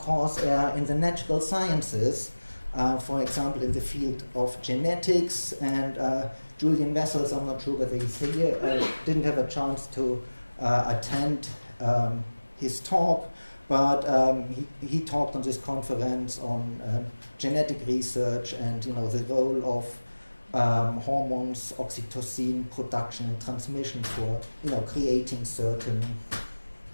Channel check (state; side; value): inverted; both; correlation -1.00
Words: in the natural sciences, for example, in the field of genetics, and Julian Wessels, I'm not sure whether he's here, didn't have a chance to attend his talk, but he talked on this conference on genetic research and the role of hormones, oxytocin production and transmission for creating certain